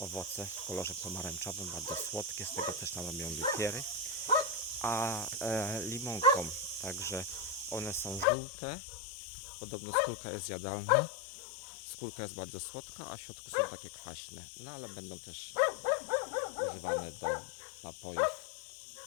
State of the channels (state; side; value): drops out; right; at 8.2 s